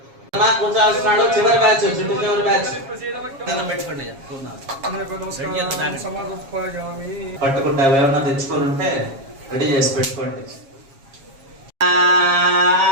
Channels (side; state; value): left; late; 7.3 ms